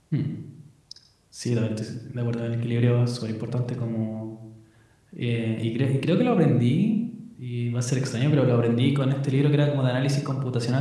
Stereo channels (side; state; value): both; identical; correlation 1.00